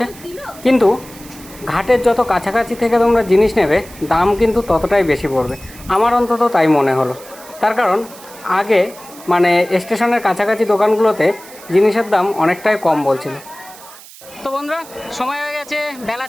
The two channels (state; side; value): noise; right; hiss, 19 dB below the sound